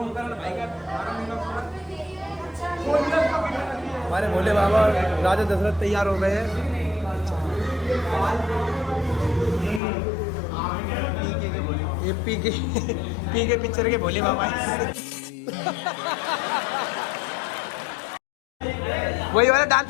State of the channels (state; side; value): drops out; right; at 9.8 s